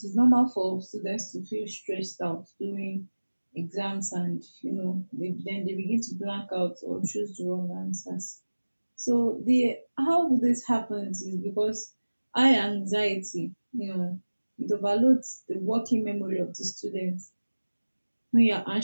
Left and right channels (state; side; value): inverted; both; correlation -1.00